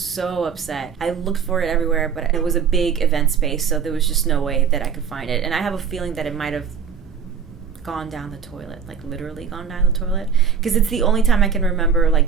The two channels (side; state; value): left; quieter; 6.8 dB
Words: upset. I looked for it everywhere, but it was a big event space, so there was just no way that I could find it. And I have a feeling that it might have gone down the toilet, like literally gone down the toilet, because it's the only time I can remember like